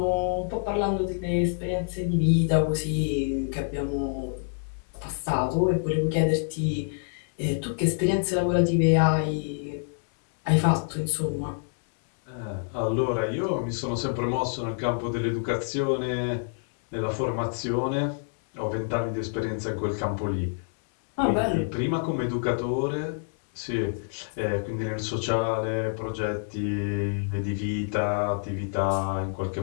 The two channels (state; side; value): silent; right; digital silence